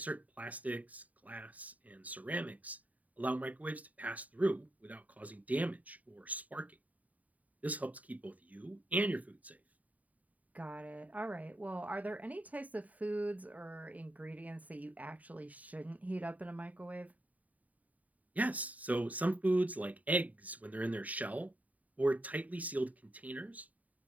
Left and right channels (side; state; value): left; late; 0.072 ms